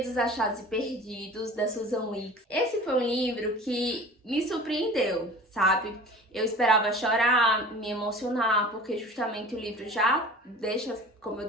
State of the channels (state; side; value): normal; both; correlation 0.41